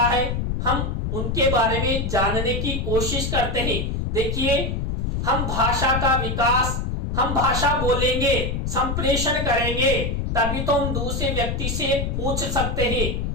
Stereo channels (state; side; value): noise; left; rumble, 1 dB below the sound